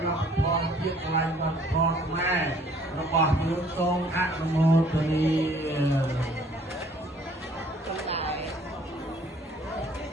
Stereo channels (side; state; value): both; normal; correlation 0.57